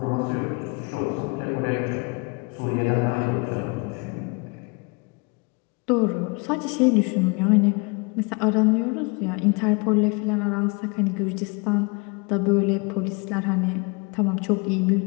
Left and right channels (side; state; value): right; quieter; 29.9 dB